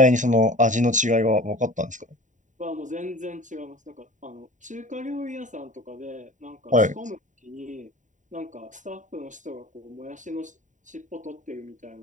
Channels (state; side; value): late; left; 0.36 ms